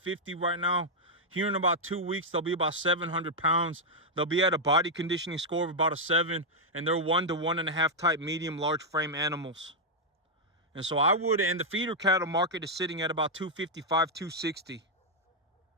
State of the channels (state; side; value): normal; both; correlation -0.03